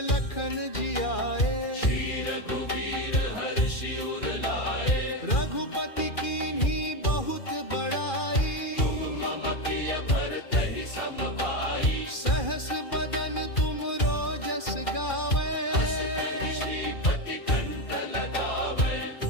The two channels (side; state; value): right; late; 2.4 ms